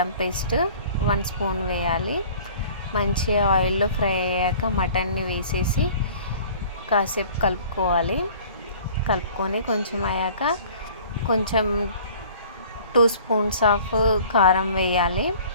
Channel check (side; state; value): both; inverted; correlation -0.49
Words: పేస్ట్ 1 స్పూన్ వేయాలి. మంచిగా ఆయిల్లో ఫ్రై అయ్యాక మటన్ని వేసేసి కాసేపు కలుపుకొని కొంచెం అయ్యాక కొంచెం 2 స్పూన్స్ ఆఫ్ కారం వేయాలి